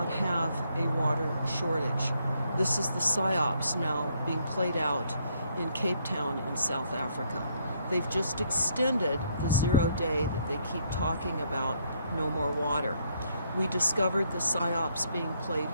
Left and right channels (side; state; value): both; inverted; correlation -0.71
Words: have a water shortage. This is the PSYOPs now being played out in Cape Town in South Africa. They've just extended the 0 day that they keep talking about, no more water. We discovered the PSYOPs being played